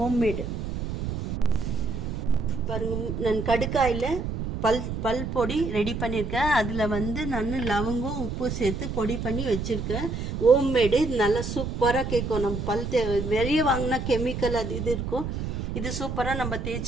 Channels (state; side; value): noise; right; rumble, 4 dB below the sound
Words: பாருங்க. நான் கடுக்காயில் பல் பொடி ரெடி பண்ணியிருக்கேன். அதில் நான் லவங்கம் உப்பு சேர்த்து பொடி பண்ணி வச்சுருக்கேன். ஹோம்மேடு. இது நல்லா சூப்பராக கேட்கும். நம்ம வெளியே வாங்கினா கெமிக்கல் அது இது இருக்கும். இது சூப்பராக நம்ம